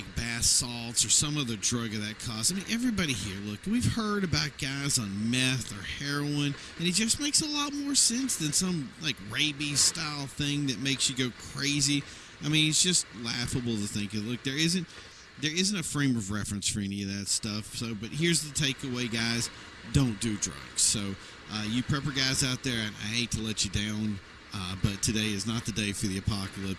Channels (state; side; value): identical; both; correlation 1.00